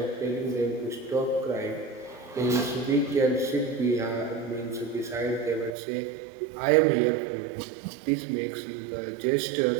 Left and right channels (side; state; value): left; drops out; at 5.7 s